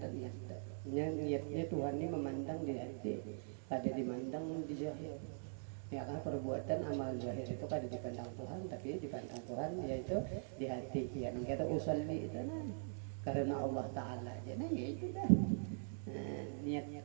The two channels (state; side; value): silent; left; digital silence